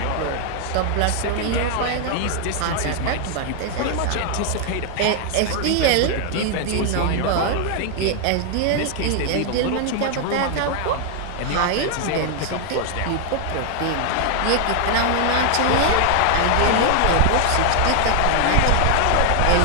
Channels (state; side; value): different; both; correlation 0.00